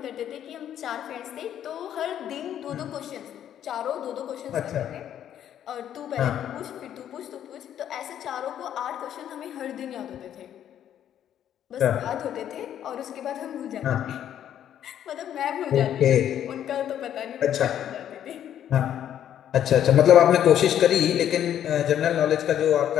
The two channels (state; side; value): quieter; right; 10.4 dB